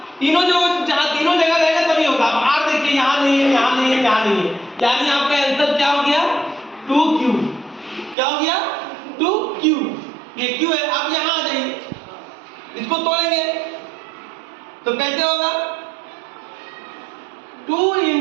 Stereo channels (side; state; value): left; drops out; at 8.2 s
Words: तीनों जो जहाँ तीनों जगह रहेगा तभी होगा। अब r देखिए यहाँ नहीं है, यहाँ नहीं है, यहाँ नहीं है, यानी आपका आंसर क्या हो गया, 2q, क्या हो गया, 2q, ये q है। अब यहाँ आ जाइए, इसको तोड़ेंगे तो कैसे होगा, 2 ×